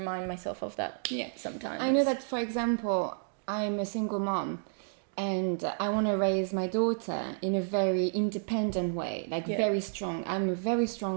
myself of that sometimes. I know that, for example, I'm a single mom, and I want to raise my daughter in a very independent way, very strong. I'm a very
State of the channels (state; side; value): silent; left; digital silence